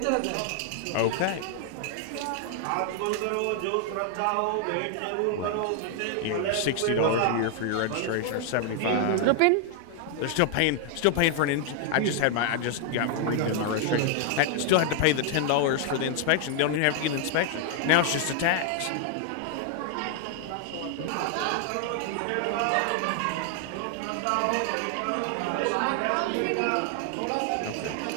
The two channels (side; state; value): both; different; correlation 0.00